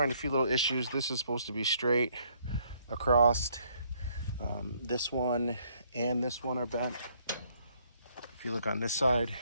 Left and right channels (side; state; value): both; inverted; correlation -0.67